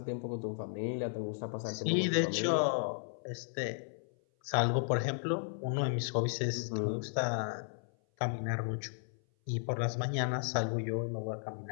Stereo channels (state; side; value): silent; right; 55 dB below the other